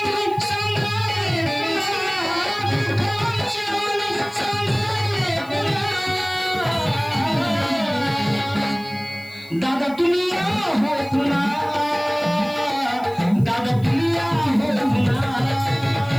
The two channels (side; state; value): left; noise; hiss, 25 dB below the sound